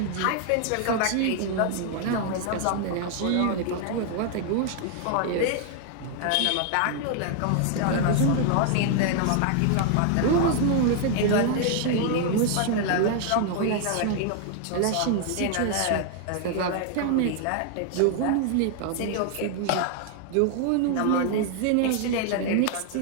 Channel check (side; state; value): both; different; correlation 0.00